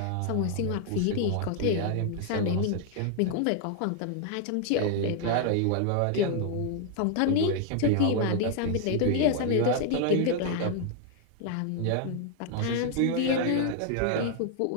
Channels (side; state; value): both; different; correlation 0.00